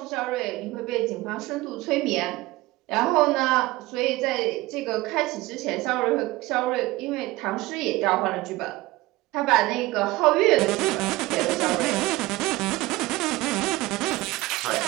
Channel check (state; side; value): quieter; left; 19.7 dB